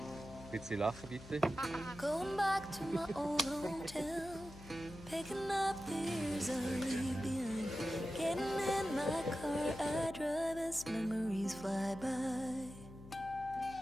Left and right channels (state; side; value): noise; left; hum, 16 dB below the sound